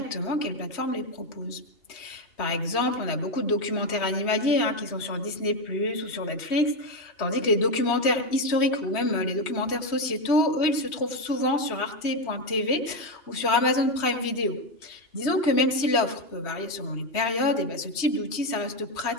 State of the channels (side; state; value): right; late; 3.1 ms